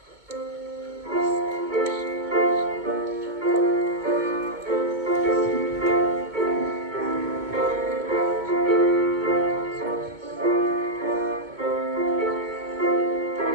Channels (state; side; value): late; left; 2.2 ms